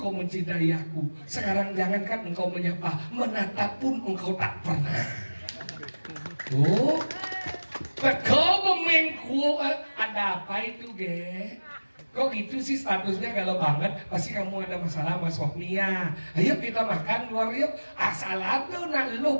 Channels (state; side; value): inverted; both; correlation -1.00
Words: mencintai aku, sekarang jangankan engkau menyapa, menatap pun engkau tak pernah. Oh, kau mengku, ada apa itu ge? Kok gitu sih statusnya galau banget? Pasti kamu ada masalah sama suaminya. Ayo kita makan luar yuk. Asal tuh nah